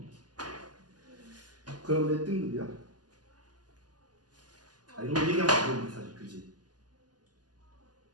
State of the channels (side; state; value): left; late; 0.69 ms